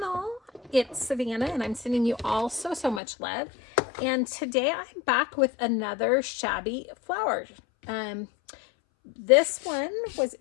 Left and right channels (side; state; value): right; drops out; at 3.0 s